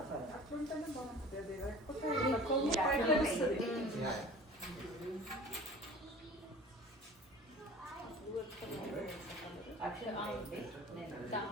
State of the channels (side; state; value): both; normal; correlation 0.42